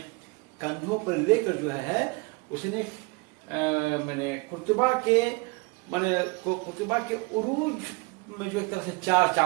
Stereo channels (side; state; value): left; quieter; 27.4 dB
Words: कंधों पर लेकर जो है उसने मैंने कुर्तुबा के उरूज में जो एक तरह से 4